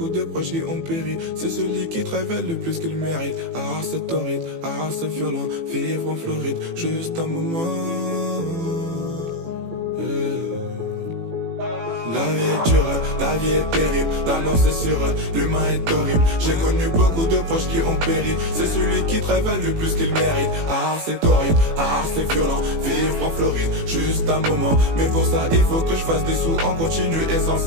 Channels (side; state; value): left; late; 18 ms